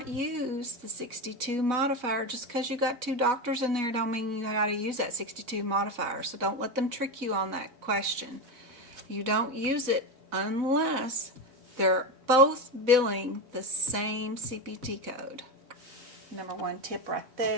use the 62 modifier. Just because you got two doctors in there don't mean you got to use that 62 modifier. So don't let them trick you on that question. You don't use it unless they're both billing the same CPT code. Number one tip right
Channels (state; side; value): late; left; 4.1 ms